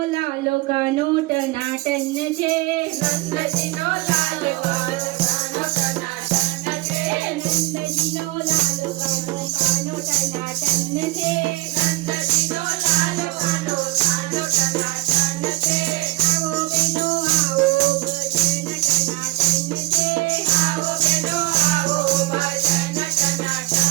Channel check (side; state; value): left; quieter; 20.7 dB